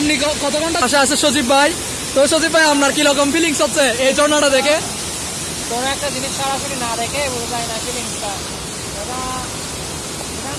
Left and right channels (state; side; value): identical; both; correlation 1.00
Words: কত ঘন্টা আশা আছে সজীব ভাই? তো সজীব ভাই, আপনার কিরকম ফিলিংস হচ্ছে এই ঝর্ণাটা দেখে? কোনো একটা জিনিস সরাসরি না দেখে বোঝা যায় না ফিলিংসটা। এটা